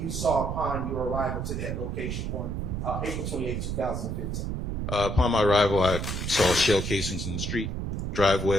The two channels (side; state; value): right; noise; rumble, 3 dB below the sound